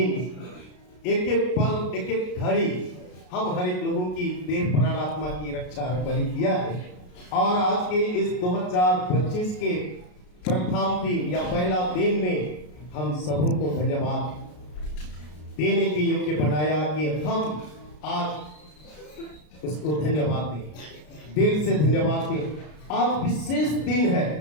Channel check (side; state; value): right; late; 33 ms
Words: एक एक पल, एक एक घड़ी हम हर एक लोगों की देह प्राण आत्मा की रक्षा बलि किया है। और आज के इस 2025 के प्रथम दिन या पहला दिन में हम सबों को धन्यवाद देने के योग्य बनाया कि हम आज उसको धन्यवाद दें, दिल से धन्यवाद दें। आज विशेष दिन है।